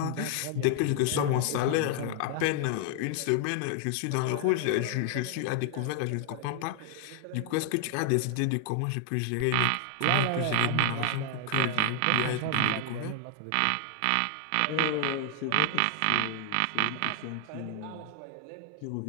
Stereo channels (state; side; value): different; both; correlation 0.00